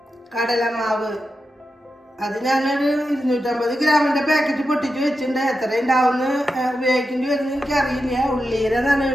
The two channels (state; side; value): normal; both; correlation 0.89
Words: കടലമാവ് അത് ഞാനൊരു 250 ഗ്രാമിൻ്റെ പാക്കറ്റ് പൊട്ടിച്ച് വെച്ചിട്ടുണ്ട്. എത്ര ഉണ്ടാവുമെന്ന് ഉപയോഗിക്കേണ്ടി വരുമെന്ന് എനിക്കറിയില്ല. ഉള്ളിയുടെ